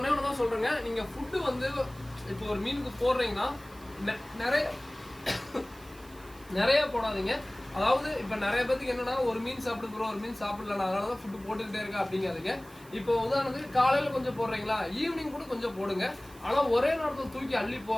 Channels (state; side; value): noise; right; hiss, 23 dB below the sound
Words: தான் சொல்கிறேங்க. நீங்கள் ஃபுட்டு வந்து இப்போ ஒரு மீனுக்கு போடுறீங்கன்னா நிறைய போடாதீங்க. அதாவது இப்போ நிறைய பேருக்கு என்னன்னா ஒரு மீன் சாப்பிட்டு ஒரு மீன் சாப்பிடலாம், அதனால தான் ஃபுட்டு போட்டுக்கிட்டே இருக்கா அப்படிங்காதீங்க. இப்போ உதாரணத்துக்கு காலையில் கொஞ்சம் போடுறீங்களா, ஈவினிங் கூட கொஞ்சம் போடுங்க. ஆனால் ஒரே நேரத்தில் தூக்கி அள்ளி